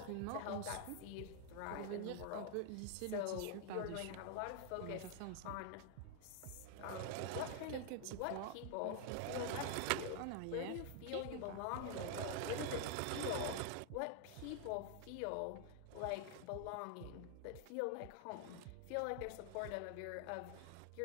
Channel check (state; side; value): different; both; correlation 0.00